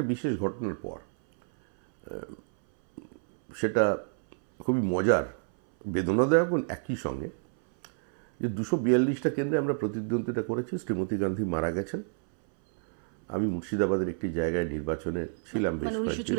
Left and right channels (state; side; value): silent; left; 59 dB below the other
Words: বিশেষ ঘটনার পর। সেটা খুবই মজার, বেদনাদায়ক একই সঙ্গে, যে 242টা কেন্দ্রে আমরা প্রতিদ্বন্দ্বিতা করেছি। শ্রীমতী গান্ধী মারা গেছেন। আমি মুর্শিদাবাদের একটি জায়গায় নির্বাচনে ছিলাম বেশ কয়েকদিন,